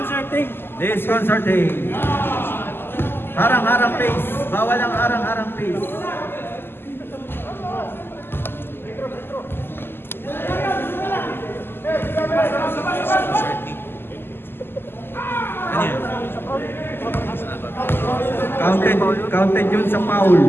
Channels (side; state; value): right; late; 0.11 ms